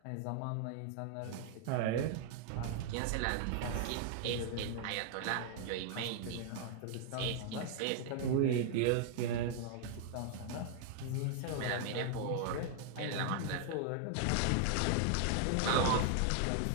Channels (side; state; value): both; different; correlation 0.00